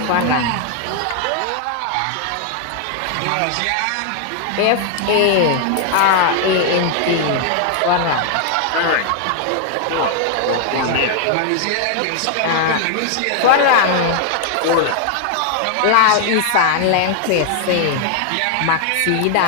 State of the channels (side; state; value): both; different; correlation 0.00